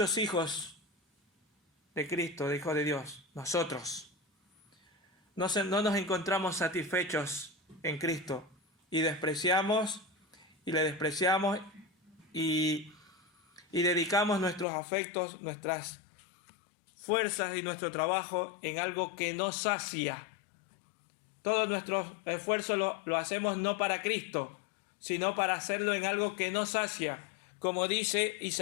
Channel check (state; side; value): drops out; right; at 14.7 s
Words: hijos de Cristo, de Hijo de Dios, nosotros, no nos encontramos satisfechos en Cristo y despreciamos y le despreciamos y dedicamos nuestros afectos, nuestras fuerzas y nuestro trabajo en algo que no sacia. Todos nuestros esfuerzos lo hacemos no para Cristo, sino para hacerlo en algo que no sacia, como dice